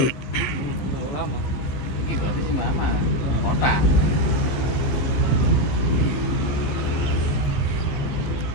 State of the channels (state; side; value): late; right; 15 ms